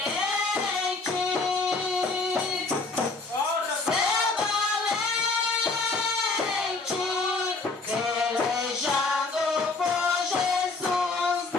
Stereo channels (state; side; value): quieter; right; 3.7 dB